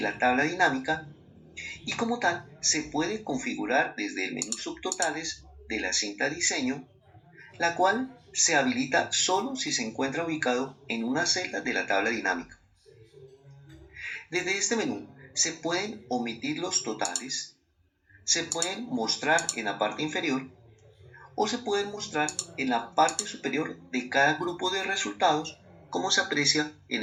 la tabla dinámica y como tal se puede configurar desde el menú subtotales de la cinta diseño, la cual se habilita solo si se encuentra ubicado en una celda de la tabla dinámica. Desde este menú se pueden omitir los totales, se pueden mostrar en la parte inferior o se pueden mostrar en la parte superior de cada grupo de resultados, como se aprecia en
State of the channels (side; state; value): both; identical; correlation 1.00